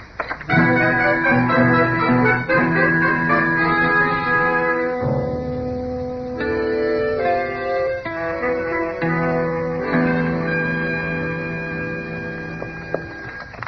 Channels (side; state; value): both; identical; correlation 1.00